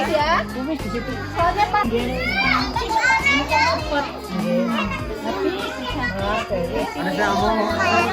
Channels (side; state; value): both; identical; correlation 1.00